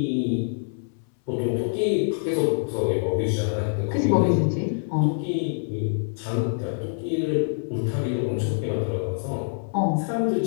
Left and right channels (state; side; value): silent; right; 62 dB below the other